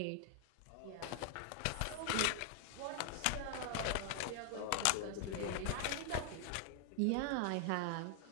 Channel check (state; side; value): different; both; correlation 0.00